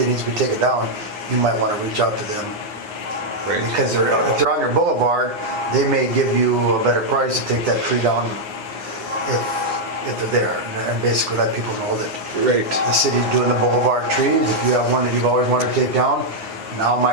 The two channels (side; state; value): left; late; 9.7 ms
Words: needs to be taken down, you might want to reach out to them. Right. Because if they're on your boulevard, they may give you a better price to take that tree down if they're there. And basically let people know that Right. the city's doing the boulevard trees. If you have one that you've always wanted to take down, now